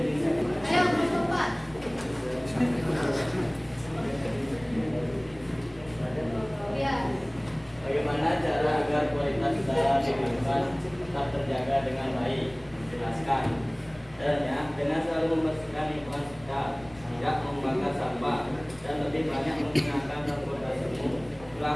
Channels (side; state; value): left; noise; rumble, 23 dB below the sound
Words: Ayo kelompok 4. Ya. Bagaimana cara agar kualitas udara di lingkungan tetap terjaga dengan baik? Jelaskan. Caranya dengan selalu membersihkan lingkungan sekitar, tidak membakar sampah, dan lebih banyak menggunakan transportasi umum,